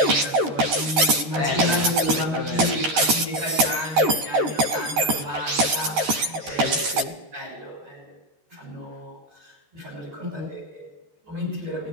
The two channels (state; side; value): late; left; 13 ms